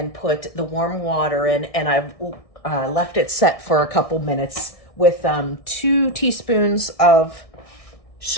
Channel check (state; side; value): late; right; 1.6 ms